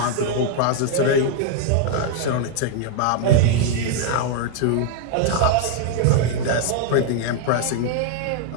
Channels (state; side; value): different; both; correlation 0.00